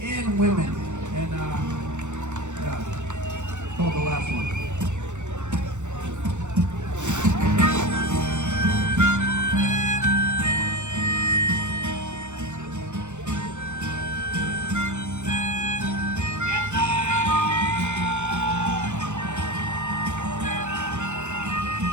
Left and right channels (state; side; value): late; left; 0.84 ms